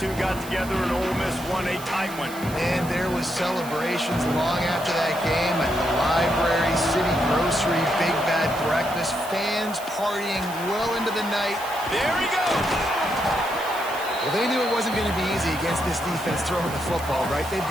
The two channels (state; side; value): noise; right; hiss, 15 dB below the sound